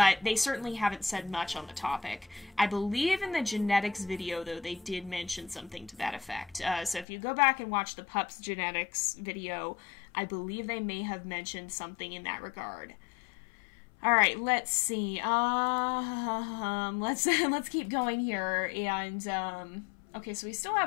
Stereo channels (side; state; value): right; drops out; at 7.1 s